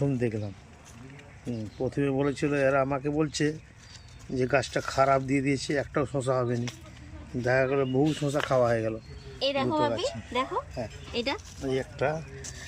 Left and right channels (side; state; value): both; identical; correlation 1.00